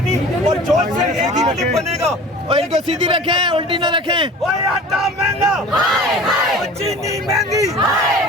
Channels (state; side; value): normal; both; correlation 0.41